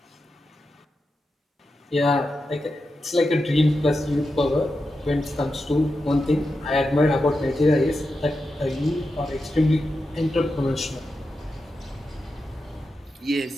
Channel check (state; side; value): normal; both; correlation 0.89